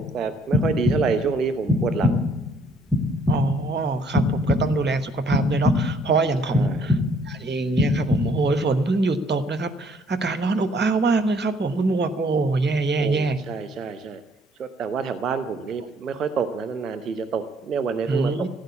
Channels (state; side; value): normal; both; correlation 0.63